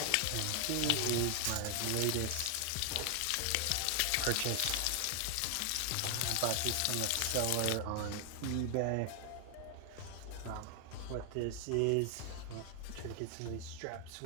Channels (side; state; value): both; different; correlation 0.00